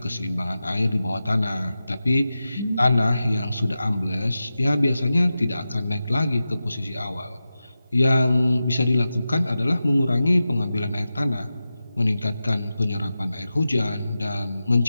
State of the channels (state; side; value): inverted; both; correlation -0.93